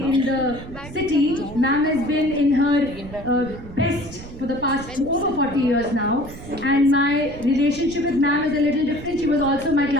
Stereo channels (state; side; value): noise; right; rumble, 14 dB below the sound